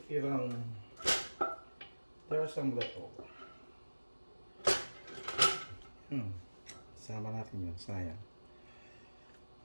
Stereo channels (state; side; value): inverted; both; correlation -1.00